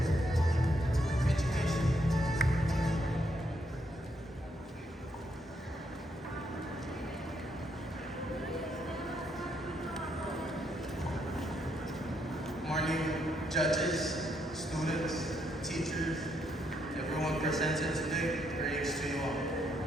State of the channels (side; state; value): both; normal; correlation 0.75